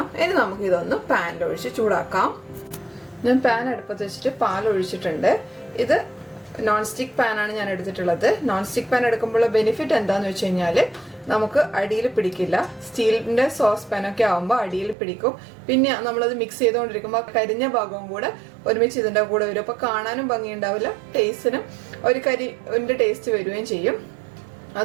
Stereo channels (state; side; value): drops out; left; at 15.0 s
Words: ഇനി നമുക്ക് ഇതൊന്ന് പാനിലൊഴിച്ച് ചൂടാക്കാം. ഞാൻ പാൻ അടുപ്പത്ത് വെച്ചിട്ട് പാൽ ഒഴിച്ചിട്ടുണ്ട്. ഇത് നോൺ സ്റ്റിക്ക് പാനാണ് ഞാൻ എടുത്തിട്ടുള്ളത്. നോൺ സ്റ്റിക്ക് പാൻ എടുക്കുമ്പോൾ ബെനിഫിറ്റ് എന്താണെന്ന് വെച്ച് കഴിഞ്ഞാൽ നമുക്ക് അടിയിൽ പിടിക്കില്ല. സ്റ്റീലിൻ്റെ സോസ് പാനൊക്കെ ആകുമ്പോൾ അടിയിൽ പിടിക്കും. പിന്നെ നമ്മളത് മിക്സ് ചെയ്തുകൊണ്ടിരിക്കുമ്പോൾ കരിഞ്ഞ ഭാഗവും കൂടെ ഒരുമിച്ച് ഇതിൻ്റെ കൂടെ വരും. അപ്പോൾ കാണാനും ഭംഗിയുണ്ടാവില്ല, ടേസ്റ്റിനും ഒരു കരിൻ്റെ ടേസ്റ്റ് വരികയും ചെയ്യും.